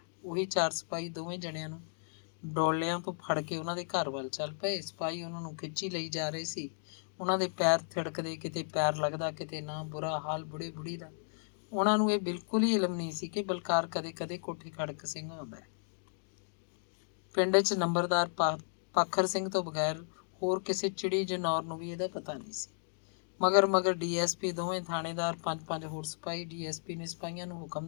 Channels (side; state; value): right; silent; digital silence